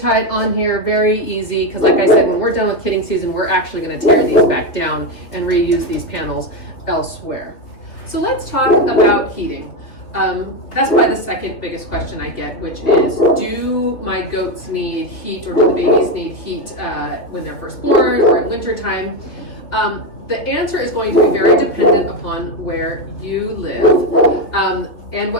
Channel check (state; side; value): late; right; 3.0 ms